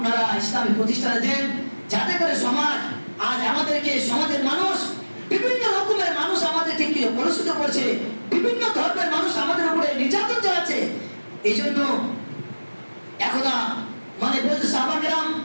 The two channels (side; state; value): both; inverted; correlation -1.00